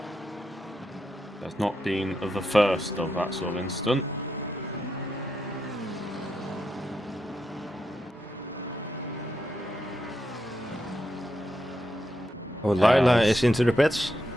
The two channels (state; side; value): normal; both; correlation 0.84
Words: That's not been the first of that sort of incident. Oh, Lila is into the pits.